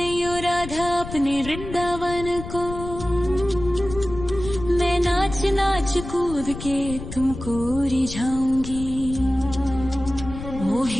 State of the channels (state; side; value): noise; left; rumble, 10 dB below the sound